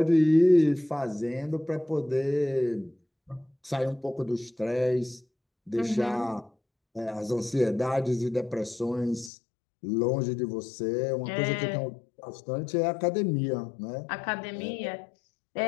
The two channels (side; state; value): right; drops out; at 9.3 s